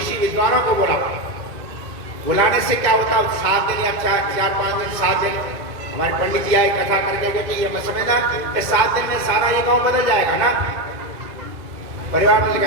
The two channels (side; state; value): left; late; 2.0 ms